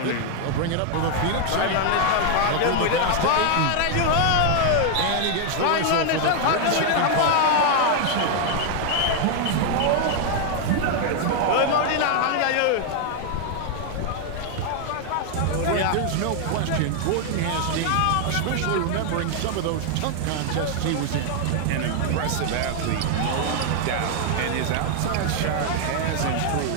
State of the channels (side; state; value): both; different; correlation 0.00